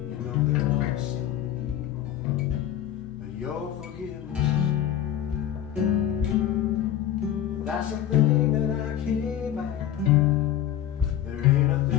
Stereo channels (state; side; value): quieter; right; 11.0 dB